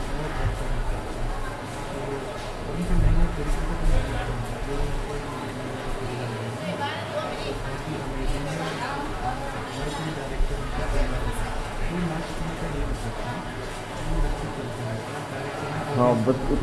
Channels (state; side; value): identical; both; correlation 1.00